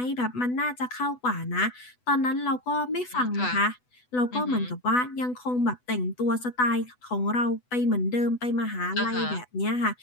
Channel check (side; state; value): right; late; 8.1 ms